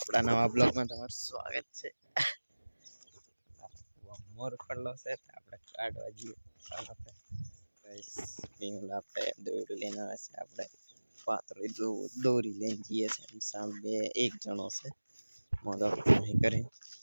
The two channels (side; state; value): both; inverted; correlation -1.00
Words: નવા બ્લોગમાં તમારું સ્વાગત છે. મોર પડલો છે, આપણે કાઢવા જઈએ. ગાઈસ, પીંગલ આપણે દોરી લઈને આવે છે, આપણે પાતળી દોરી લઈને જઈએ છીએ. સામે એક જણો છે, મોદો નહીં કરી